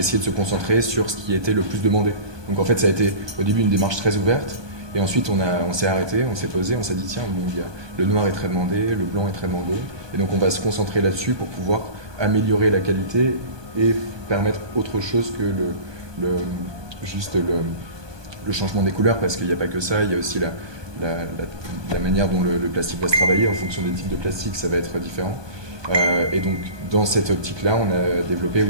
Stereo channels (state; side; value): late; left; 1.2 ms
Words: de se concentrer sur ce qui était le plus demandé. Donc en fait, ça a été au début une démarche très ouverte. Et ensuite, on s'est arrêté, on s'est posé, on s'est dit tiens, le noir est très demandé, le blanc est très demandé. Et donc on va se concentrer là-dessus pour pouvoir améliorer la qualité et permettre autre chose que le changement des couleurs, parce qu'il n'y a pas que ça, il y a aussi la manière dont le plastique va se travailler. En fonction des types de plastique, ça va être différent. Et donc dans cette optique-là, on a développé